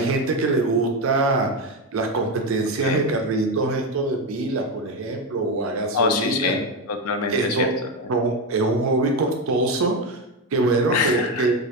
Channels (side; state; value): both; normal; correlation 0.12